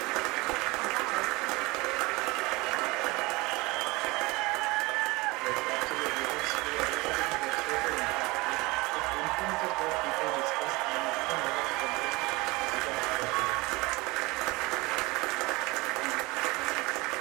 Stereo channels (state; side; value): quieter; left; 23.3 dB